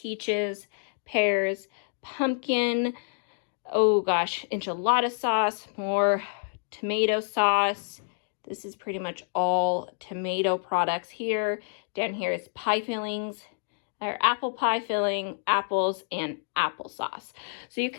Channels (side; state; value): right; silent; digital silence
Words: pears, pumpkin, oh gosh, enchilada sauce, more tomato sauce. This is pretty much all tomato products here. Down here is pie fillings, our apple pie filling, apples, and applesauce. So you